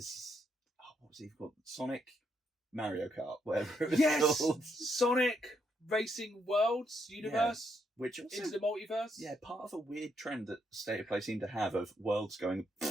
what was he called? Sonic Mario Kart, whatever it was Yes! called. Sonic Racing Worlds Universe Which also, into the multiverse. yeah, part of a weird trend that State of Play seemed to have of worlds going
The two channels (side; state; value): both; normal; correlation 0.76